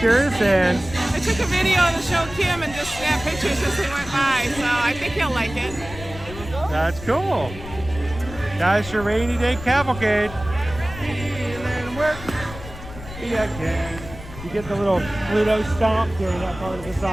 and I took a video to show Kim and just snapped pictures as they went by, so I think he'll like it. that's cool. That's your rainy day cavalcade. Feeling work. Yeah, okay. You get the little Pluto stomp during that part of the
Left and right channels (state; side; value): noise; left; rumble, 13 dB below the sound